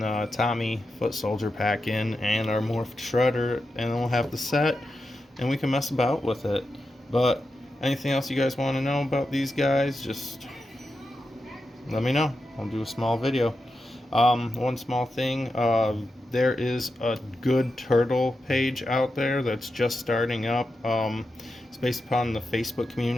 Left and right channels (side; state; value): both; normal; correlation 0.89